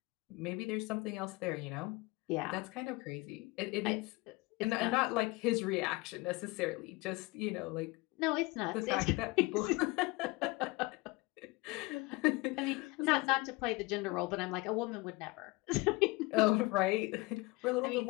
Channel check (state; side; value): quieter; right; 23.5 dB